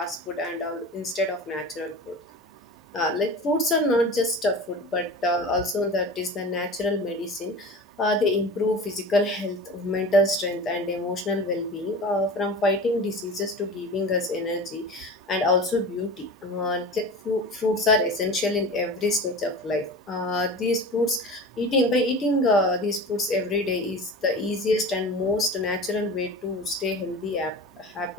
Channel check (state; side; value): normal; both; correlation 0.34